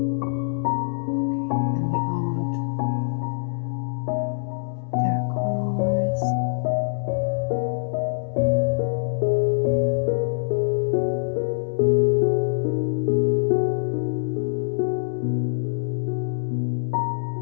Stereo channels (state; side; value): silent; right; digital silence